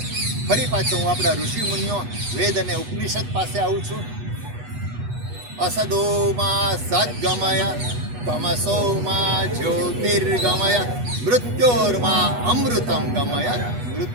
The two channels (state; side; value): late; left; 8.2 ms